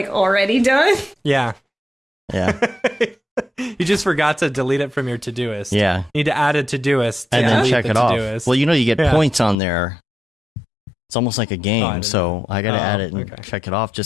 already done. Yeah. Yeah, You just forgot to delete it from your Todoist. yeah, You need to add a Todoist to and then delete check the it off. Todoist. Well, you get Yeah. points on there. It's almost like a I game, didn't so I gotta Oh, add it and okay. check it off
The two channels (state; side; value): drops out; right; at 9.6 s